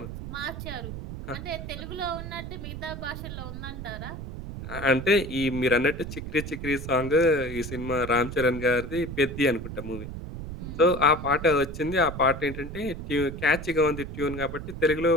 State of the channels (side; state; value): right; noise; rumble, 8 dB below the sound